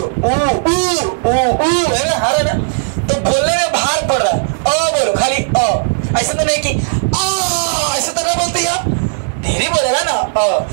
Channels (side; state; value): left; silent; 66 dB below the other